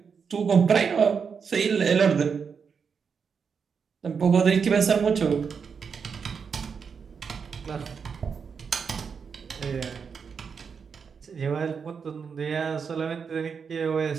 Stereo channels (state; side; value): quieter; left; 6.1 dB